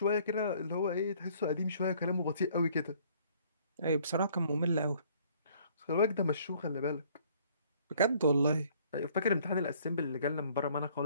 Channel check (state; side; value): inverted; both; correlation -0.59